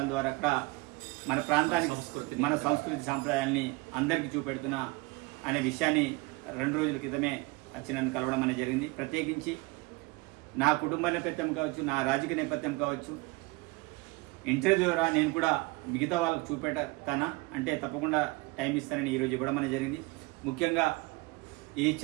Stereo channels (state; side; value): quieter; left; 24.5 dB